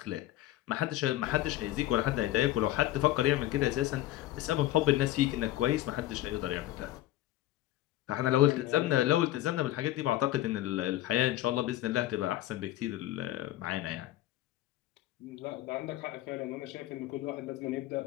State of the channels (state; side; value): quieter; right; 14.8 dB